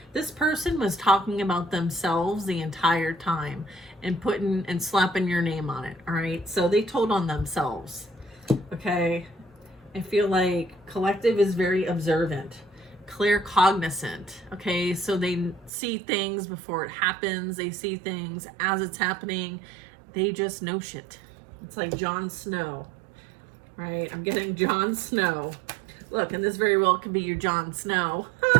this person was talking about themselves the entire time and putting and slapping your name on it. All right, so they told on themselves. Okay, I feel like collective is very observant, clear cognizant. Okay, so they see things before it happens. They see things as it's happening. They just know shit. It's like Jon Snow, right? I'm getting Jon Snow. Look, and this very well could be your Jon Snow,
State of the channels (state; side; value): drops out; left; at 15.7 s